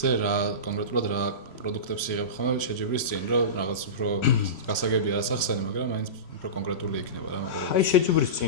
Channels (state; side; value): late; right; 3.0 ms